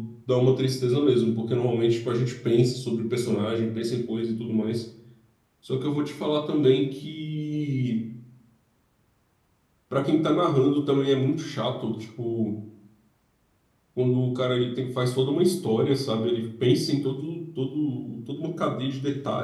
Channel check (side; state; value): both; identical; correlation 1.00